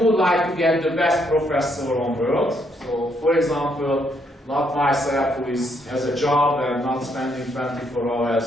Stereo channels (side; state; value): both; normal; correlation 0.73